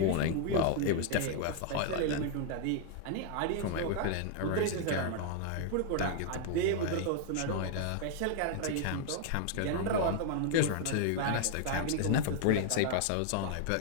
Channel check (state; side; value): different; both; correlation 0.00